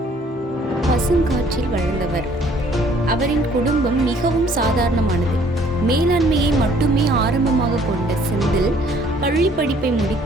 பசுங்காற்றில் வளர்ந்தவர். அவரின் குடும்பம் மிகவும் சாதாரணமானது. மேலாண்மையை மட்டுமே ஆரம்பமாக கொண்ட செந்தில் பள்ளி படிப்பை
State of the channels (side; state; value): both; normal; correlation 0.60